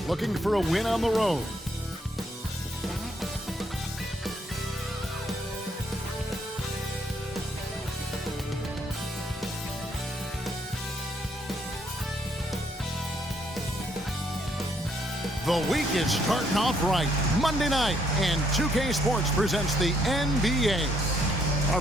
looking for a win on the road. The week is starting off right. Monday night, and 2K Sports presents the NBA.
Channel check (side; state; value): both; normal; correlation 0.71